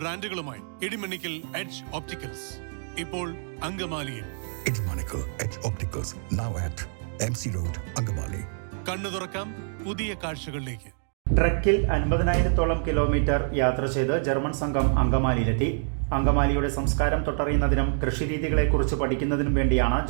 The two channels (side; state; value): left; silent; digital silence